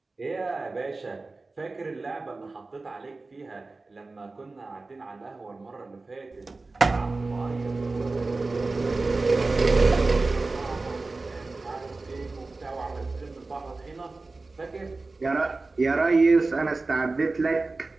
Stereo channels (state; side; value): quieter; left; 3.5 dB